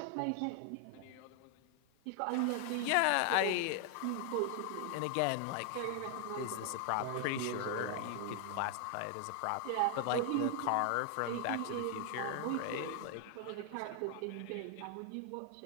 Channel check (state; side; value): different; both; correlation 0.00